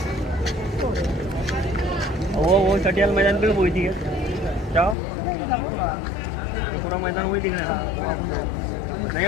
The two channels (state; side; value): drops out; right; at 5.0 s